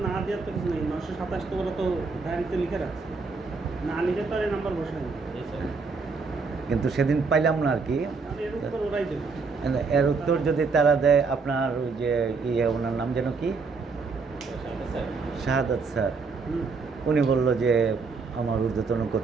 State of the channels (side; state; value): left; quieter; 4.6 dB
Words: না দেওয়ার তো কিছু নেই। 927 তো ওরা তো ডায়েরিতে লিখে রাখছে, না লিখে তো আর এই নাম্বার বসে নেই। কিন্তু সেদিন পাইলাম না আর কি। তাহলে এর উত্তর ওরাই দেবে। এর উত্তর যদি তারা দেয়, আপনার ওই যে ওনার নাম যেন কি, শাহাদাত স্যার, হুম। উনি বলল যে আমার ঊর্ধ্বতন